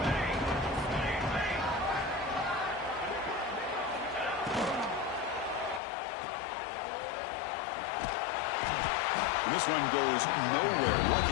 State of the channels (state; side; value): drops out; right; at 5.8 s